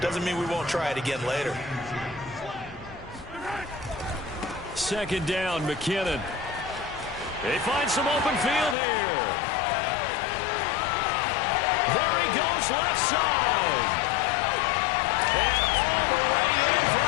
mean we won't try it again later. Second down, McKinnon. They find some open field here. There he goes, left side. And all the way in for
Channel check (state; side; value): drops out; right; at 8.8 s